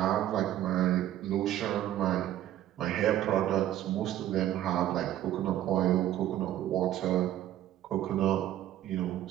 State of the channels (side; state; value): left; quieter; 12.6 dB